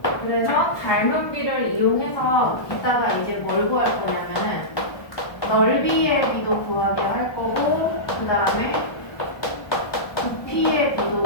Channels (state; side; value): late; right; 1.2 ms